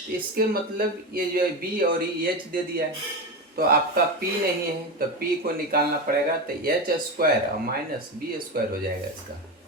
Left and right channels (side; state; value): both; normal; correlation 0.19